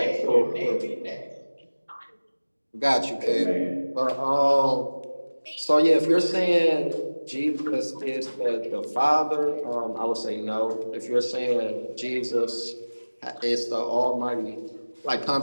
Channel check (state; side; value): inverted; both; correlation -1.00